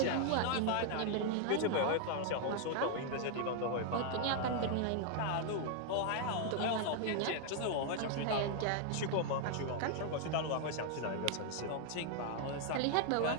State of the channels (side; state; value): both; different; correlation 0.00